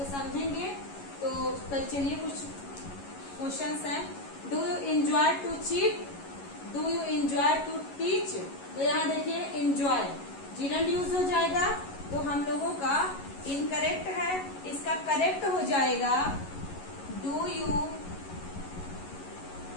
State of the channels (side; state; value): right; late; 11 ms